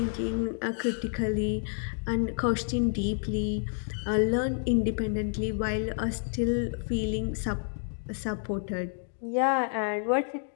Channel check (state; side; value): silent; right; 58 dB below the other